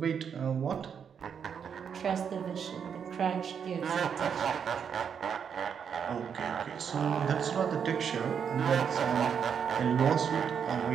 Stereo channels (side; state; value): left; quieter; 7.3 dB